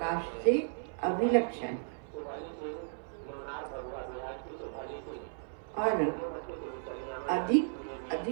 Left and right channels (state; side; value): silent; left; 55 dB below the other